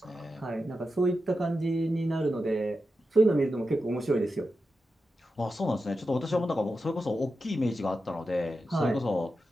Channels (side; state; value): both; normal; correlation 0.90